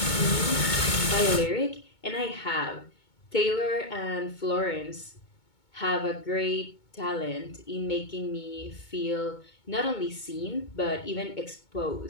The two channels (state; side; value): late; right; 2.2 ms